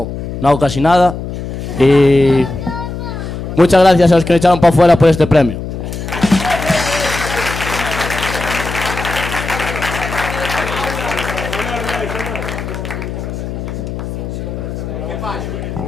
hago casi nada. Y muchas gracias a los que me echaron para afuera por este premio.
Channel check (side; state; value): left; noise; hum, 7 dB below the sound